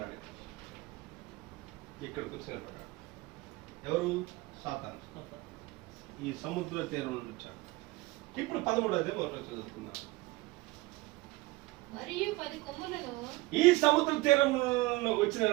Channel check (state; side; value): quieter; left; 20.8 dB